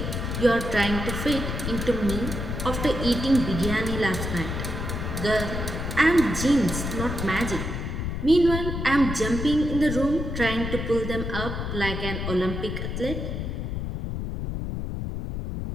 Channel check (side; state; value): left; noise; rumble, 4 dB below the sound